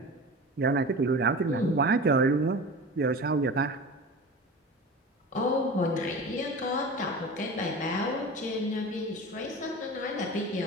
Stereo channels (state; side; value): normal; both; correlation 0.33